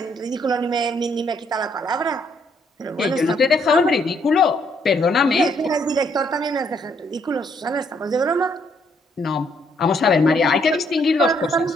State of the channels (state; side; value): normal; both; correlation 0.70